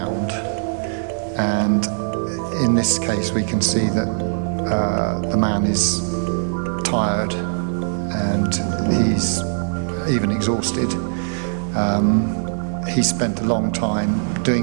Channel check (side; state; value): left; silent; digital silence